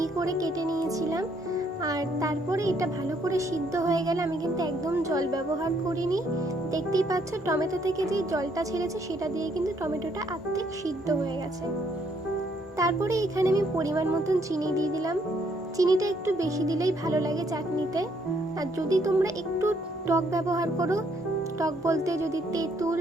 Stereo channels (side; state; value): both; normal; correlation 0.70